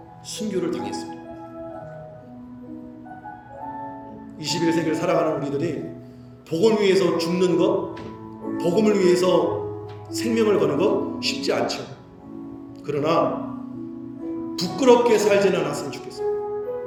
순교를 당했습니다. 21세기를 살아가는 우리들이 복음을 위해서 죽는 것, 복음을 위해서 생명을 거는 것 쉽지 않죠. 그러나 부끄럽게 살지는 않았으면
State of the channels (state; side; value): identical; both; correlation 1.00